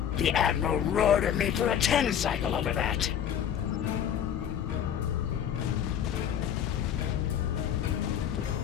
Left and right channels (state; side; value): quieter; right; 9.3 dB